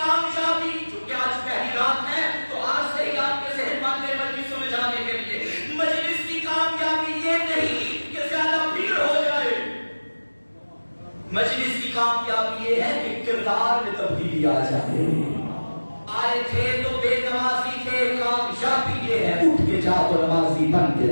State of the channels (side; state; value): both; inverted; correlation -1.00